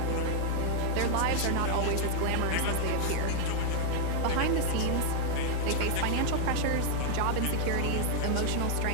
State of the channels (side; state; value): both; different; correlation 0.00